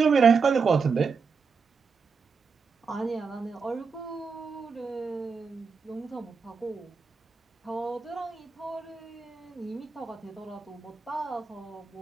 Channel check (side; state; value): left; quieter; 5.2 dB